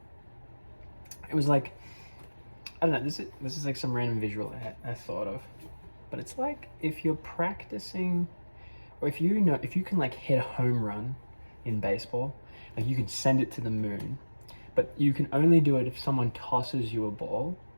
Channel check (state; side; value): inverted; both; correlation -1.00